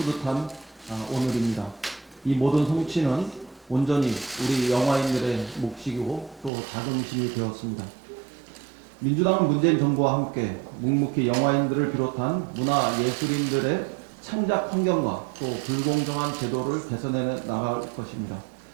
오늘입니다. 이 모든 성취는 온전히 우리 영화인들의 몫이고 또 자긍심이 되었습니다. 민주당은 문재인 정부와 함께 묵묵히 영화인들을 비롯한 문화예술인들의 창작 환경과 또 불공정한 제도를 개선해 나갈 것입니다.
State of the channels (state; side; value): drops out; left; at 6.5 s